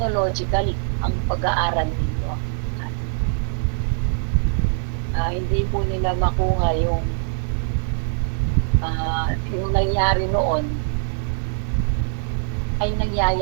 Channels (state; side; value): silent; left; digital silence